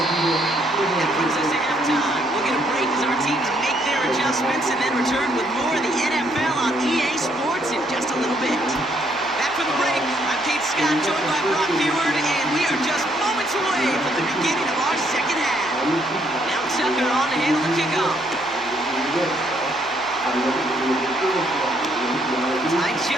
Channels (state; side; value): noise; left; hum, 26 dB below the sound